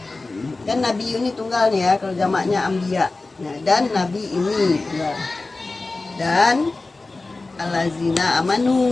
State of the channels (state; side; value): quieter; right; 3.4 dB